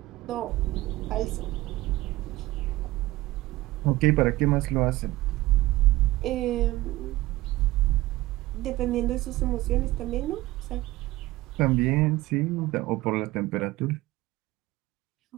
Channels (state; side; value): quieter; left; 18.3 dB